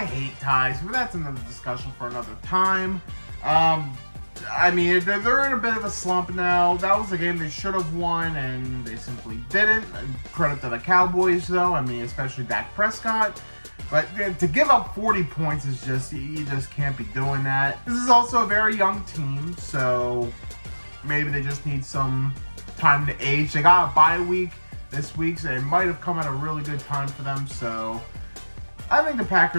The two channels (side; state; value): both; inverted; correlation -1.00